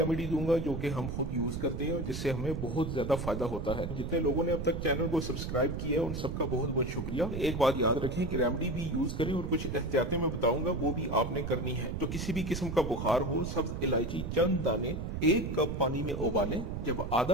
दूंगा जो कि हम खुद यूज करते हैं और जिससे हमें बहुत ज्यादा फायदा होता है। जितने लोगों ने अब तक चैनल को सब्सक्राइब किया है उन सबका बहुत बहुत शुक्रिया। एक बात याद रखें कि रेमेडी भी यूज करें और कुछ एहतियातें मैं बताऊंगा वो भी आपने करनी है। तो किसी भी किस्म का बुखार हो, सब्ज इलायची चंद दाने 1 कप पानी में उबालें। जब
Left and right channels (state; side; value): noise; right; rumble, 4 dB below the sound